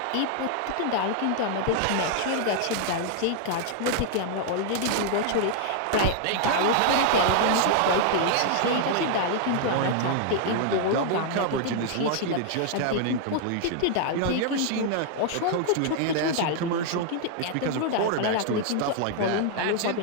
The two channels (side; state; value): both; different; correlation 0.00